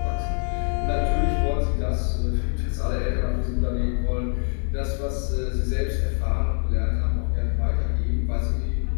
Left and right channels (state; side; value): silent; right; 56 dB below the other